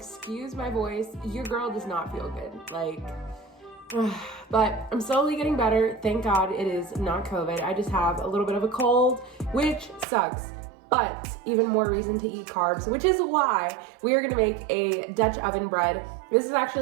my voice, your girl does not feel good, but I'm slowly getting better. Thank God it is not COVID. I just have a little bit of a cold, which sucks, but even more reason to eat carbs, which is why we are gonna make a Dutch oven bread. This is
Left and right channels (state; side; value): drops out; left; at 10.1 s